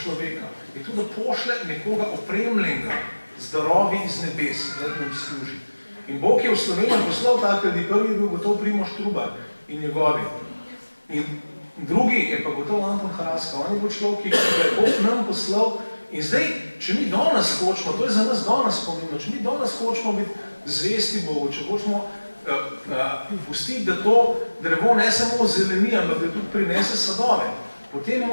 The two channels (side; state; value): both; inverted; correlation -1.00